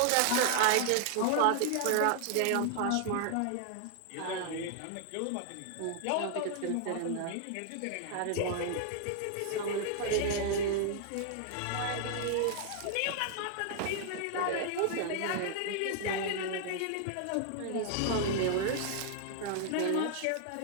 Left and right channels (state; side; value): different; both; correlation -0.01